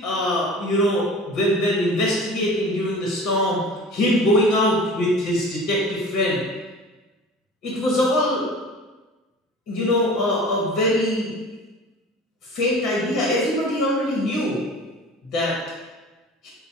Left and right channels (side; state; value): both; normal; correlation 0.40